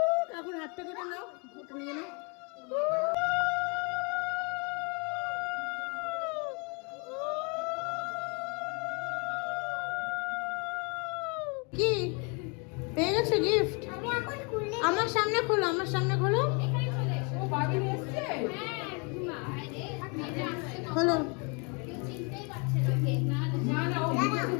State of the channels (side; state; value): right; quieter; 33.4 dB